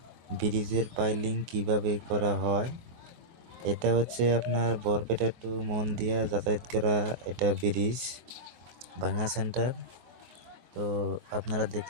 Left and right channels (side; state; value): left; late; 24 ms